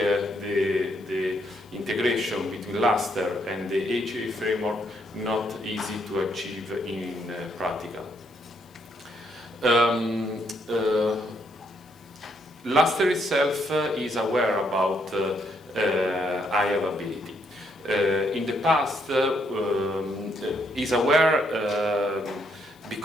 integration between Lustre and the HA framework not easy to achieve in practical. Lustre itself is aware about high availability. In the past, is aware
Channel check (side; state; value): left; noise; hiss, 30 dB below the sound